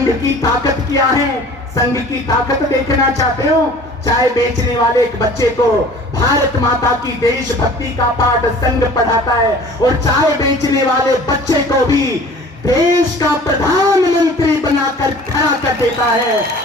की ताकत क्या है? संघ की ताकत देखना चाहते हो? चाय बेचने वाले एक बच्चे को भारत माता की देशभक्ति का पाठ संघ पढ़ाता है और चाय बेचने वाले बच्चे को भी देश का प्रधानमंत्री बनाकर खड़ा कर देता है।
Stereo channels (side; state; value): both; normal; correlation 0.46